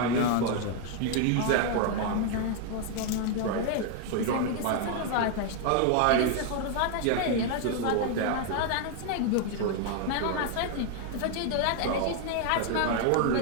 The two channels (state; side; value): different; both; correlation 0.00